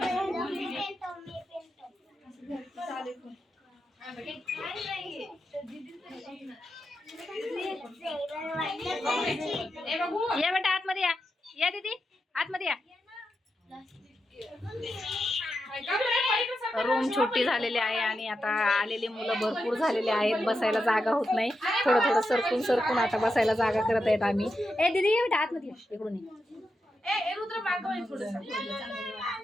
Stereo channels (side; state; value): both; normal; correlation 0.87